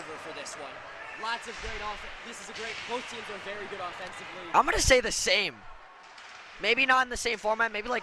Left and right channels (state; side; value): identical; both; correlation 1.00